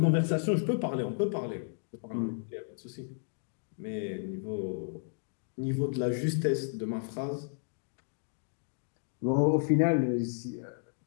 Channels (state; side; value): silent; right; digital silence